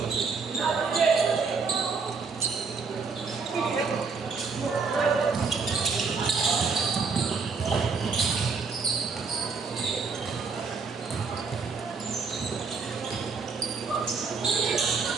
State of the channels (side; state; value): left; quieter; 4.8 dB